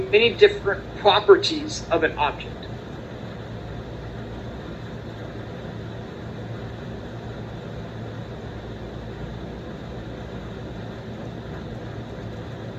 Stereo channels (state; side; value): identical; both; correlation 1.00